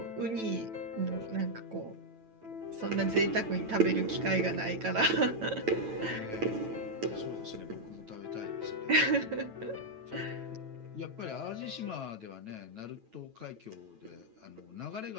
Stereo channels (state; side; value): late; left; 9.1 ms